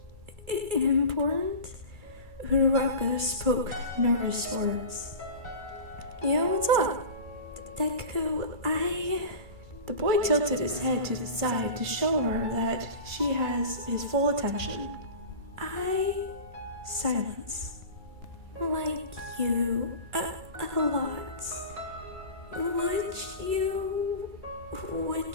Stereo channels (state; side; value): late; left; 2.3 ms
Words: important? Uraraka spoke nervous words. Yeah, what's up? Deku, The boy tilted his head to the side to show her that she has his full attention. Silence. Like you, a lot.